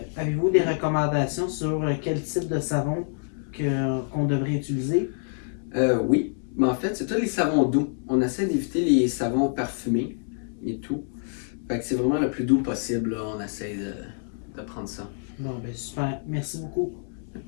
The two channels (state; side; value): silent; right; 61 dB below the other